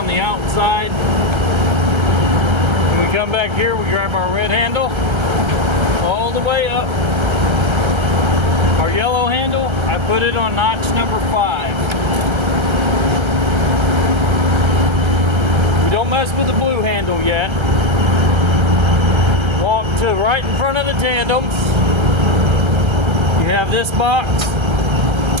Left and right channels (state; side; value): late; left; 1.3 ms